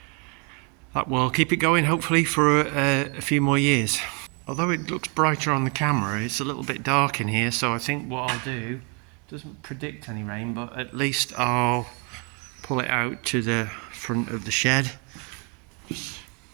will keep it going, hopefully, for a few more years. Although it looks brighter on the camera, it's a little bit dark in here, so I think what I'll do, doesn't predict any rain, but at least I'll pull it out to the front of the shed. Just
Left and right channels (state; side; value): quieter; left; 34.6 dB